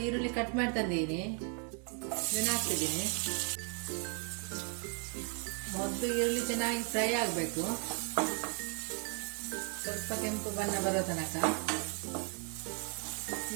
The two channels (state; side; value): quieter; left; 38.2 dB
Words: ಈರುಳ್ಳಿ ಕಟ್ ಮಾಡಿ ತಂದಿದ್ದೀನಿ. ಇದನ್ನು ಹಾಕ್ತಿದ್ದೀನಿ. ಮೊದಲು ಈರುಳ್ಳಿ ಚೆನ್ನಾಗಿ ಫ್ರೈ ಆಗಬೇಕು. ಸ್ವಲ್ಪ ಕೆಂಪು ಬಣ್ಣ ಬರೋ ತನಕ.